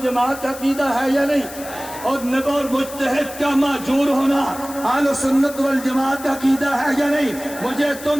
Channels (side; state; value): left; noise; hiss, 14 dB below the sound